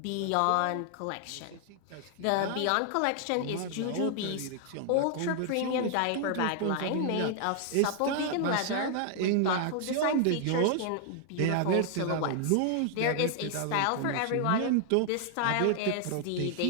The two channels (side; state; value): both; different; correlation 0.00